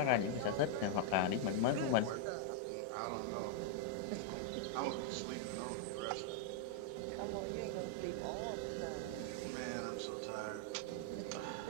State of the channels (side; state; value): both; different; correlation -0.01